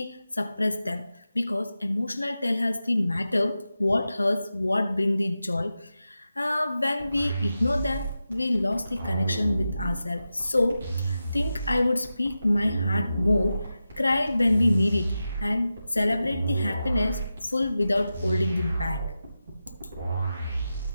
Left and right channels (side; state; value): both; inverted; correlation -0.92